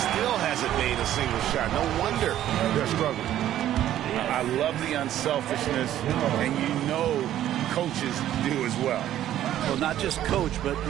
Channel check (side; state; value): left; quieter; 12.2 dB